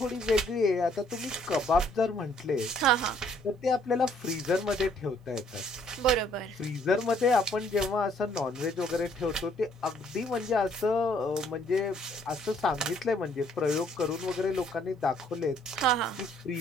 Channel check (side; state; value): both; normal; correlation 0.64